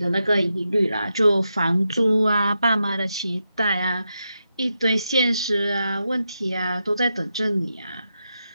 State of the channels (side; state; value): both; inverted; correlation -0.86